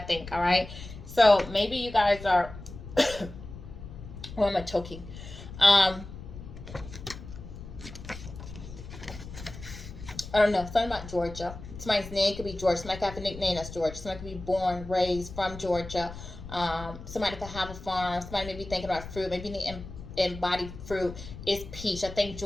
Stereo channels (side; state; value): left; noise; rumble, 13 dB below the sound